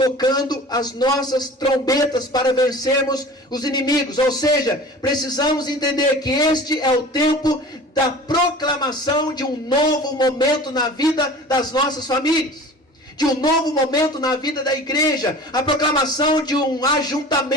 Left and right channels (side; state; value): both; normal; correlation 0.40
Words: as nossas trombetas para vencermos os inimigos. Ou seja, precisamos entender que este é o tempo da proclamação de um novo momento na vida das nossas famílias, de um novo momento na vida da igreja, a proclamação de um